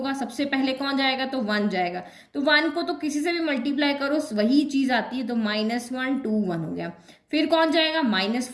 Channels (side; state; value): both; identical; correlation 1.00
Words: सबसे पहले कौन जाएगा, तो 1 जाएगा। तो 1 को तो किसी से भी मल्टीप्लाई करो वही चीज आती है, तो -1 2 1 हो गया। फिर कौन जाएगा,